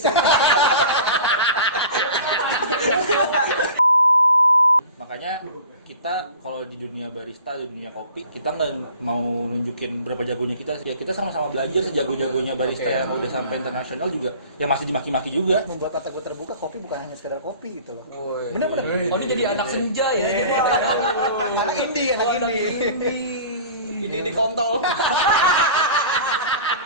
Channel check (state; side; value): inverted; both; correlation -0.42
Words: sana. Makanya kita kalau di dunia barista, di dunia kopi, kita nggak mau nunjukin berapa jagonya kita. Ya kita sama-sama belajar sejago-jagonya barista yang udah sampai internasional juga. Ya masih dimaki-maki juga. Membuat mata gue terbuka, kopi bukan hanya sekedar kopi gitu loh. Bener-bener. Oh, ini jadi anak senja ya. Anak indie. Ini kontol.